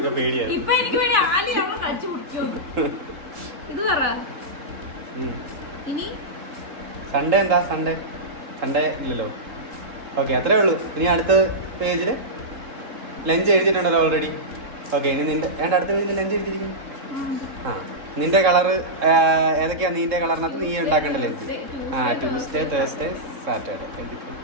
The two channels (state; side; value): late; left; 3.6 ms